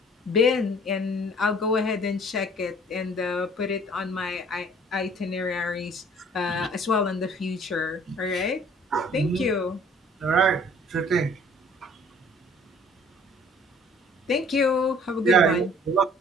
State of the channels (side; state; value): both; normal; correlation 0.54